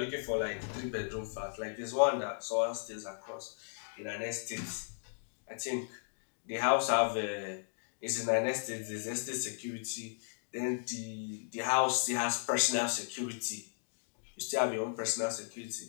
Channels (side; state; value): right; silent; digital silence